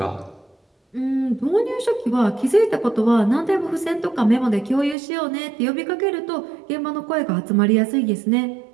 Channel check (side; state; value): left; drops out; at 5.0 s